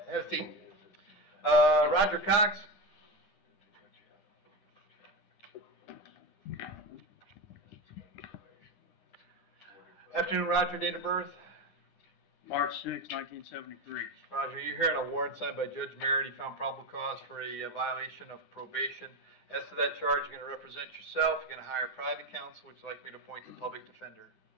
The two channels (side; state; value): right; late; 9.8 ms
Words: Have a seat. Roger Cox? Afternoon, Roger. Date of birth? March 6, 1973. Roger, you're hearing a warrant signed by Judge Merritt. He found probable cause for a violation of probation. As to that charge, you're going to represent yourself. You're going to hire private counsel. Would you like me to appoint the public defender?